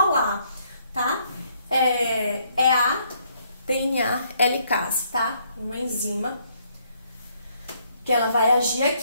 tá? É a DNA helicase, tá? Uma enzima que ela vai agir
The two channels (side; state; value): both; inverted; correlation -0.70